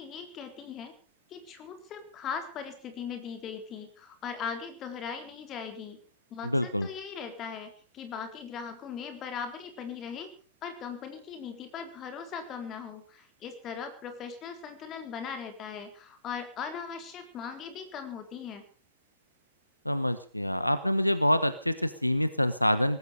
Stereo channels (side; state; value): both; inverted; correlation -0.70